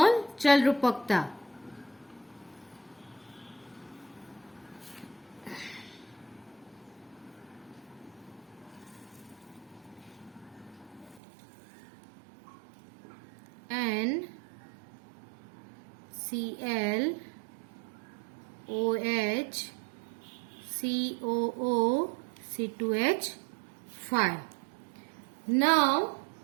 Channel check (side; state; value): left; drops out; at 11.2 s